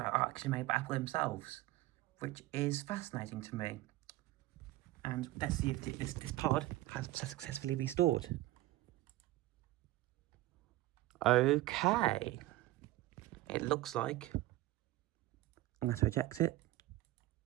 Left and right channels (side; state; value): left; quieter; 17.1 dB